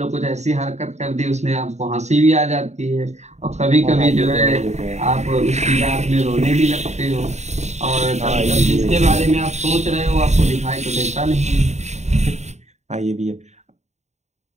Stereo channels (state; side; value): late; left; 0.33 ms